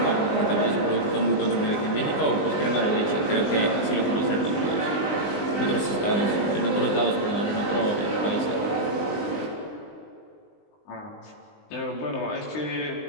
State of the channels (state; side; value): late; right; 20 ms